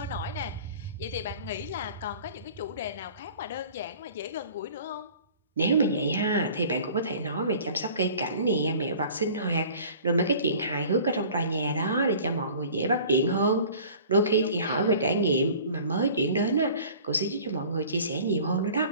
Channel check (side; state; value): both; inverted; correlation -0.46